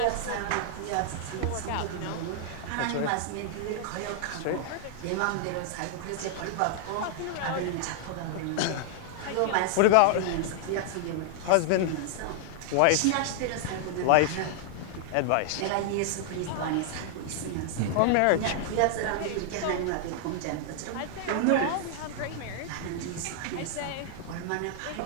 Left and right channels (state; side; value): different; both; correlation -0.01